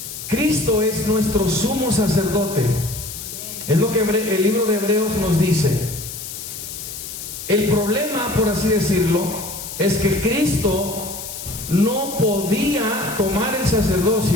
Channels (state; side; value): noise; left; hiss, 9 dB below the sound